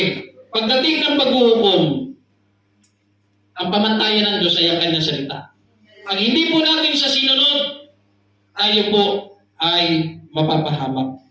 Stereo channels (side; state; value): both; identical; correlation 1.00